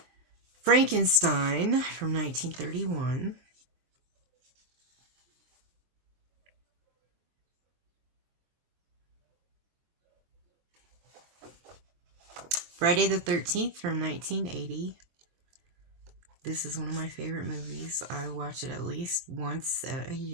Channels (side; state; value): left; late; 23 ms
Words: Frankenstein from 1931. Friday the 13th from 1980. This is one of my favorite movies. I watch it at least once a